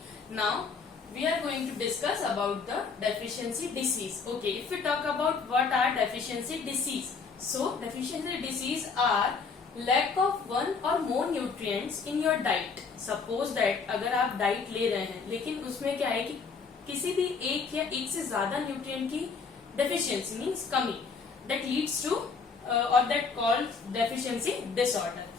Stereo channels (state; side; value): quieter; right; 5.1 dB